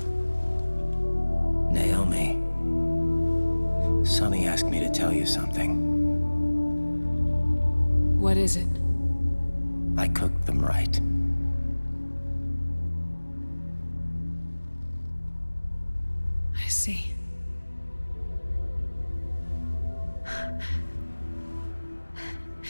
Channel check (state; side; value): inverted; both; correlation -1.00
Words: Naomi, Sonny asked me to tell you something. What is it? I cooked them right. I see.